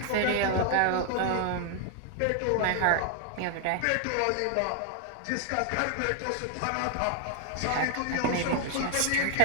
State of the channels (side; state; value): both; different; correlation 0.00